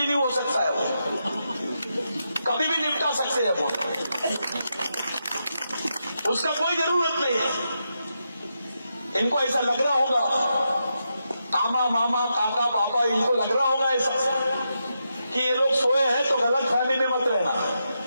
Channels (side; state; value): both; inverted; correlation -0.85